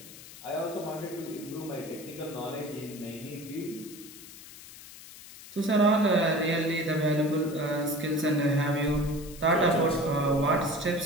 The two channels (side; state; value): left; noise; hiss, 17 dB below the sound